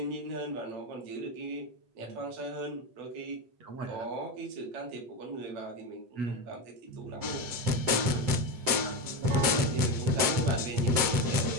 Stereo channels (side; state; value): left; late; 7.7 ms